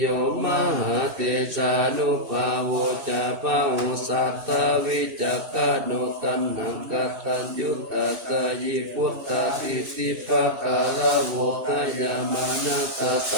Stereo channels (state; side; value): late; left; 2.9 ms